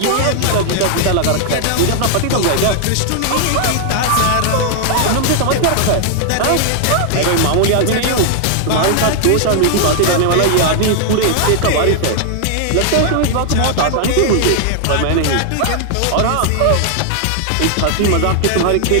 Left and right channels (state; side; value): different; both; correlation 0.00